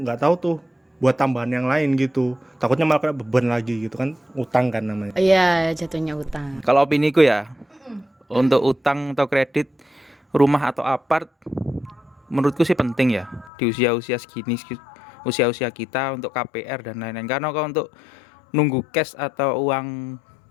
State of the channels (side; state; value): right; drops out; at 13.5 s